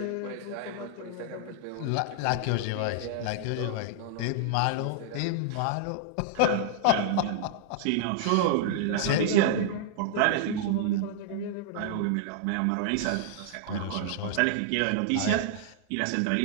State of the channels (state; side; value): different; both; correlation -0.01